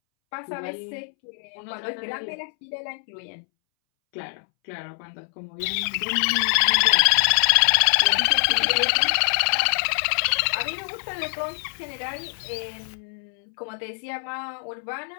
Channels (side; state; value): right; silent; 62 dB below the other